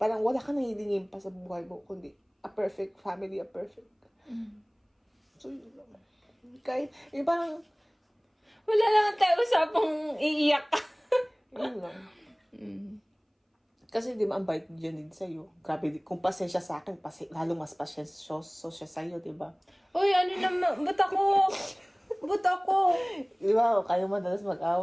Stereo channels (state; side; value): identical; both; correlation 1.00